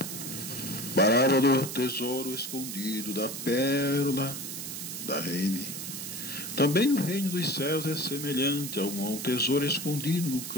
Parábola do tesouro escondido, da pérola da rede. Também o reino dos céus é semelhante a um tesouro escondido no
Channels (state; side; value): noise; right; hiss, 7 dB below the sound